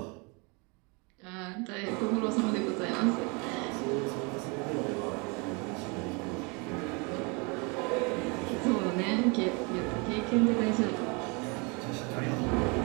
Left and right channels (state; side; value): quieter; left; 30.6 dB